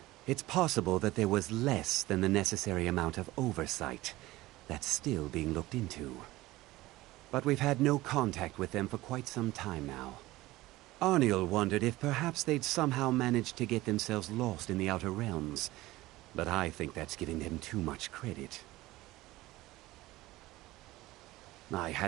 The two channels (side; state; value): left; quieter; 18.2 dB